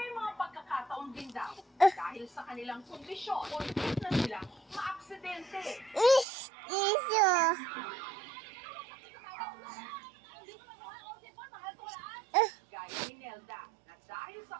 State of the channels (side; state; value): left; drops out; at 6.2 s